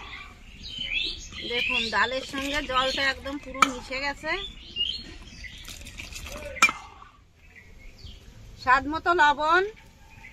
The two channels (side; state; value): both; identical; correlation 1.00